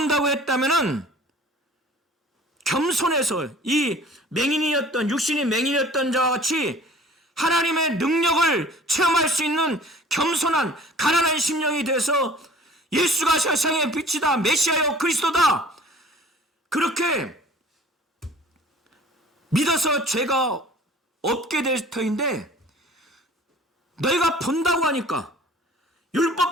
했다면은 겸손해서 이 맹인이었던 육신이 맹인이었던 자와 같이 하나님의 능력을 체험할 수 있는 겸손한 가난한 심령이 돼서 예수가 세상의 빛이다, 메시아요, 그리스도다, 그렇게 믿어서 죄가 없게 될 터인데 너희가 본다고 하니까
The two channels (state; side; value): normal; both; correlation 0.49